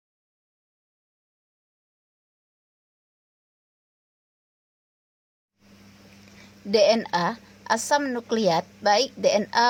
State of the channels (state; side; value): identical; both; correlation 1.00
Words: DNA, asam nukleat, baik